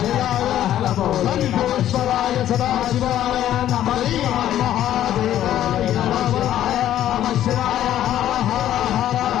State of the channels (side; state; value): right; quieter; 11.9 dB